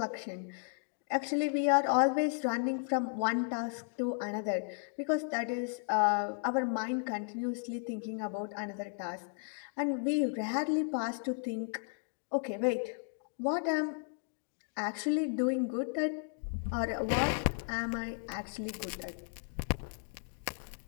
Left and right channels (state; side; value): silent; right; 55 dB below the other